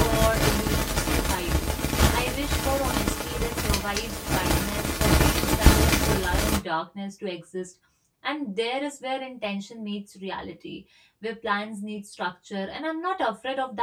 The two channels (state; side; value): identical; both; correlation 1.00